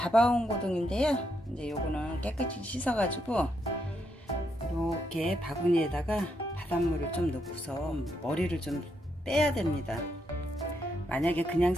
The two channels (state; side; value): normal; both; correlation 0.79